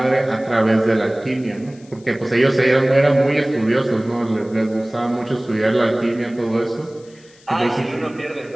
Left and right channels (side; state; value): left; noise; hiss, 28 dB below the sound